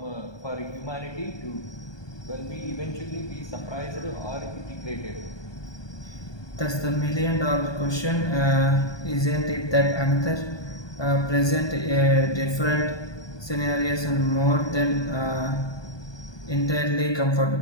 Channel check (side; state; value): right; late; 1.2 ms